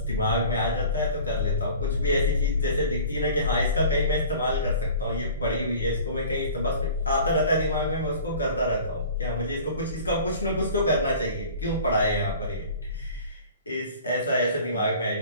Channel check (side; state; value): both; inverted; correlation -0.44